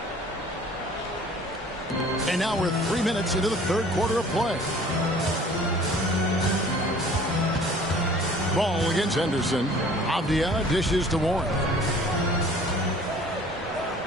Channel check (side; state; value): both; normal; correlation 0.50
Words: And now we're 3 minutes into the third quarter of play. Ball against Henderson. Avdia dishes to Warren.